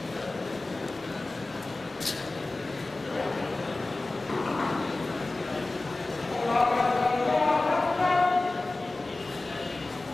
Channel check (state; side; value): quieter; right; 3.0 dB